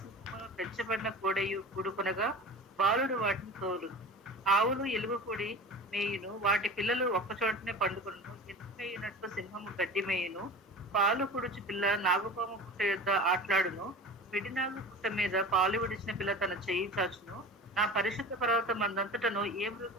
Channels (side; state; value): both; normal; correlation 0.35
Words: పెంచబడిన కోడయు కూడుకొనగా బాలుడు వాటిని తోలు. ఆవులు ఎలుగు పొడి మేయును, వాటి పిల్లలు ఒక్కచోటనే పండుకొను. ఎత్తుకైనట్లు సింహము గడ్డి మేయును, పాలు కుడుచు పిల్ల నాగుపాము పుట్ట యొద్ద ఆట్లాడును. విడినాగు పుట్ట మీద పాలు విడిచిన పిల్ల తన చెయ్యి చాచును. నా పరిశుద్ధ పర్వతం అందంతటను ఏ